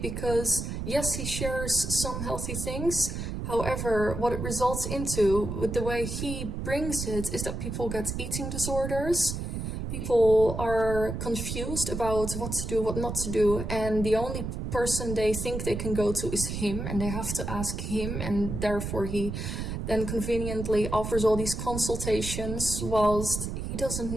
yes, he shares some healthy things. However, what it results into, with the way he brings it, is that people get eating disorders. People are confused about what to do, what not to do, and the only person they think they can go to is him, and they have to ask him, and therefore he then conveniently offers all these consultations whilst he doesn't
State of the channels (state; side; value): noise; right; rumble, 4 dB below the sound